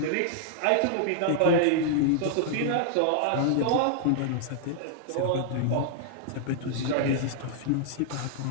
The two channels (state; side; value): different; both; correlation -0.01